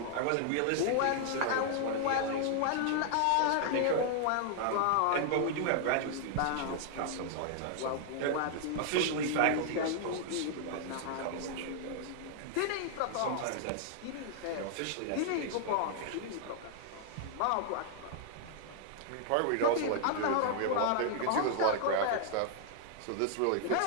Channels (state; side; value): different; both; correlation 0.00